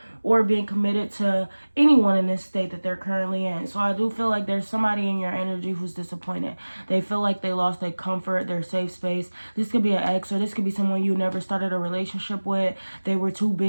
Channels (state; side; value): inverted; both; correlation -1.00